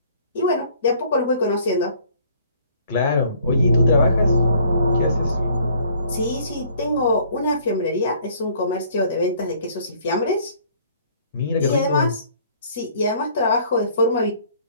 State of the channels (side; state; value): both; inverted; correlation -0.58